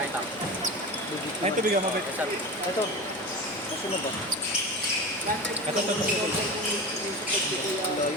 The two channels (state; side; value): normal; both; correlation 0.28